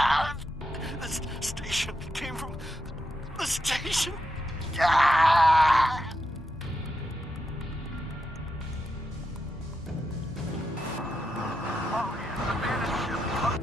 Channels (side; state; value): both; normal; correlation 0.85